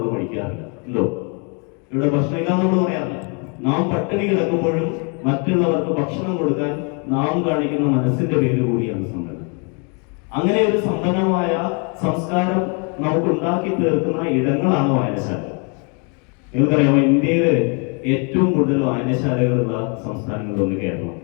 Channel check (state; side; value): quieter; right; 36.0 dB